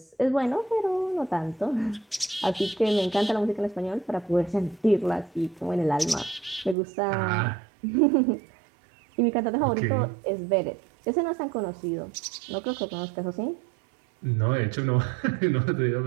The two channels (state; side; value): drops out; left; at 6.8 s